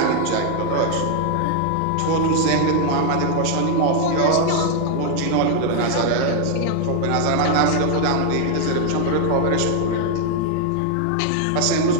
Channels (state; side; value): different; both; correlation 0.00